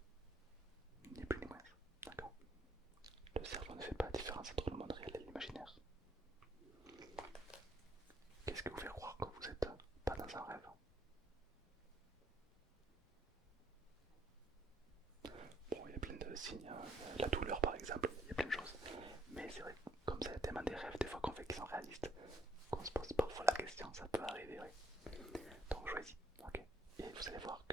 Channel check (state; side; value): normal; both; correlation 0.69